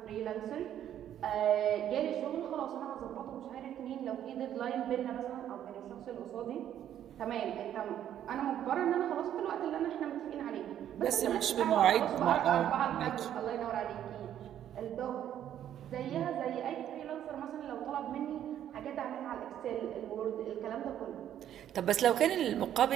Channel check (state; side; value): quieter; left; 10.7 dB